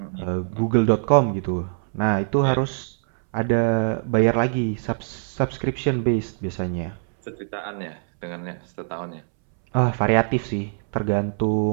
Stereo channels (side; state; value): left; silent; 63 dB below the other